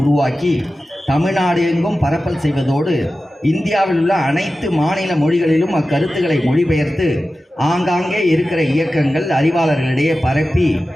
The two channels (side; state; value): both; normal; correlation 0.94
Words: உருவாக்கி தமிழ்நாடு எங்கும் பரப்பல் செய்வதோடு இந்தியாவில் உள்ள அனைத்து மாநில மொழிகளிலும் அக்கருத்துக்களை மொழிபெயர்த்து ஆங்காங்கே இருக்கிற இயக்கங்கள், அறிவாளர்களிடையே பரப்பி